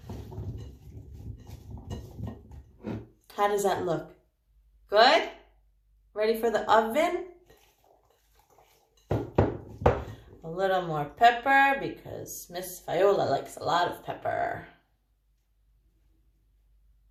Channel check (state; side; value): identical; both; correlation 1.00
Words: How does that look? Good? Ready for the oven? A little more pepper because Miss Viola likes a lot of pepper.